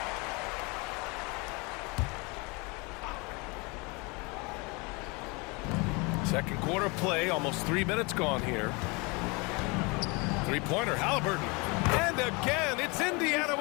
Second quarter play, almost 3 minutes gone here. Three-pointer, Halliburton. And again, it's Indiana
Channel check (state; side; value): quieter; right; 28.5 dB